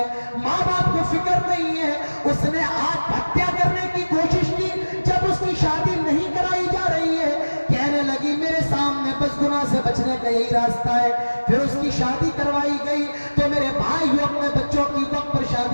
ماں باپ کو فکر نہیں ہے، اس نے آتم ہتیا کرنے کی کوشش کی، جب اس کی شادی نہیں کرائی جا رہی ہے کہنے لگی میرے سامنے بس گناہ سے بچنے کا یہی راستہ ہے۔ پھر اس کی شادی کروائی گئی۔ تو میرے بھائیو، اپنے بچوں کی وقت پر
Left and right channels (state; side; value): inverted; both; correlation -1.00